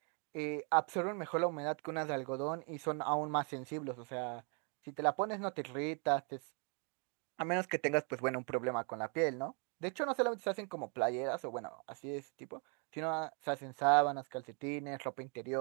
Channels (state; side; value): quieter; left; 38.3 dB